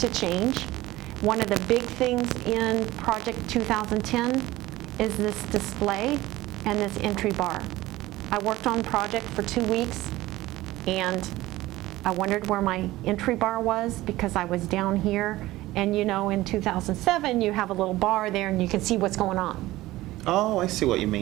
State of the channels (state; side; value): quieter; left; 17.2 dB